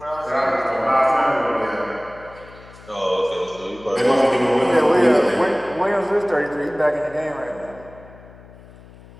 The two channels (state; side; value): noise; left; hum, 21 dB below the sound